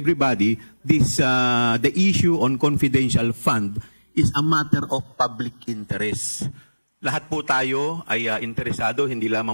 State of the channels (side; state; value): both; inverted; correlation -1.00